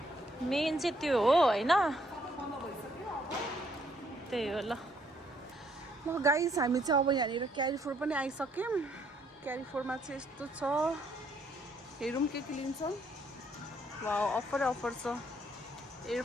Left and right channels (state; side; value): normal; both; correlation 0.69